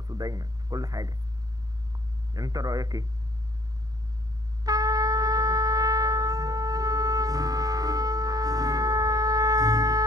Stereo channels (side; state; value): left; late; 0.18 ms